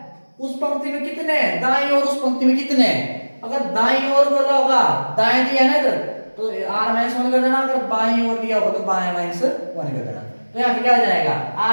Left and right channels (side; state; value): both; inverted; correlation -1.00